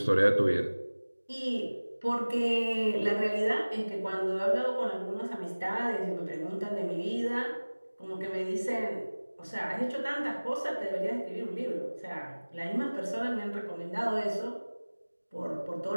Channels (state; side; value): inverted; both; correlation -1.00